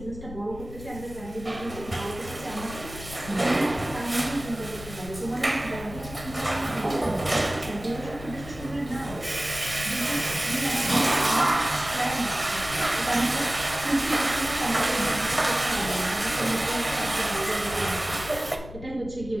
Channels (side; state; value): left; noise; rumble, 13 dB below the sound